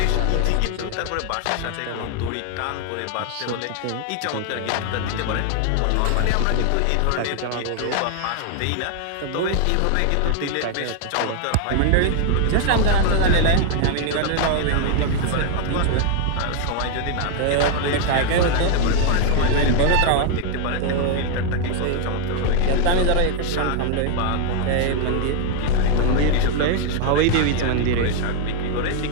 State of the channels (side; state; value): both; different; correlation 0.00